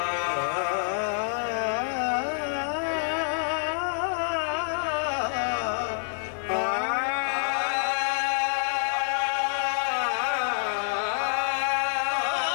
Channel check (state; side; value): silent; right; 60 dB below the other